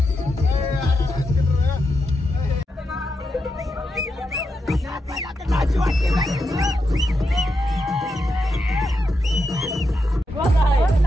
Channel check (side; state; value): both; normal; correlation 0.85